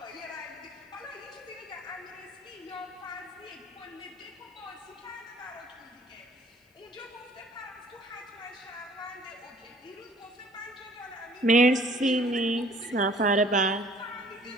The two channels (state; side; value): normal; both; correlation 0.55